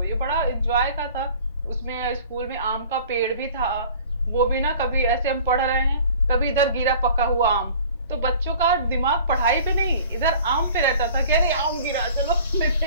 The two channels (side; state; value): both; inverted; correlation -0.47